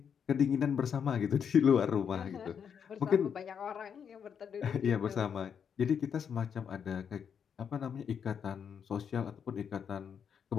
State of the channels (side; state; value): right; quieter; 7.5 dB